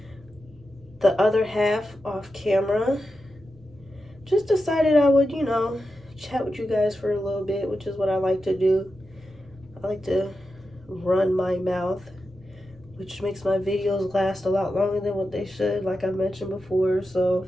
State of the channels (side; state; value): both; normal; correlation 0.90